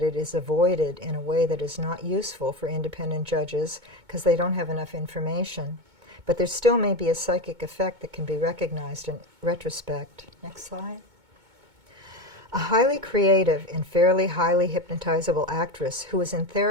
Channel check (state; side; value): late; left; 2.2 ms